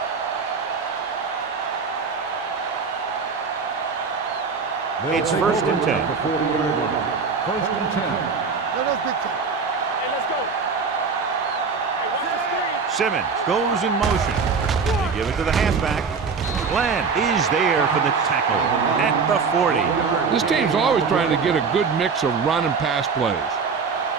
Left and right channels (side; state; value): left; quieter; 5.2 dB